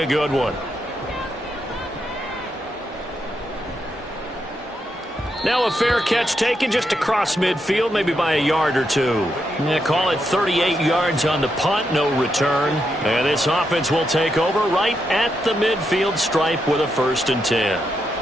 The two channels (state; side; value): normal; both; correlation 0.82